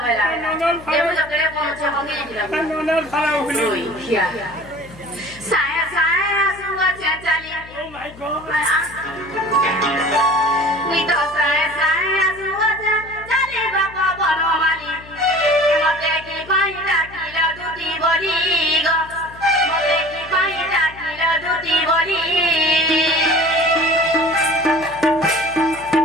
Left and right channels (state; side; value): noise; left; hum, 20 dB below the sound